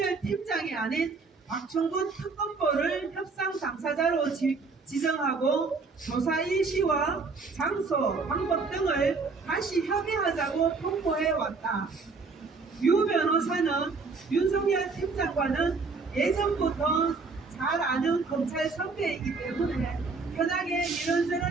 팀장이 아닌 박충근 특검보를 협상 당사자로 지정하고 조사 일시와 장소, 방법 등을 다시 협의하자고 통보해 왔다. 유 변호사는 윤석열 팀장과는 예전부터 잘 아는 검찰 선배이기 때문에 편하게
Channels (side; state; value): left; quieter; 4.3 dB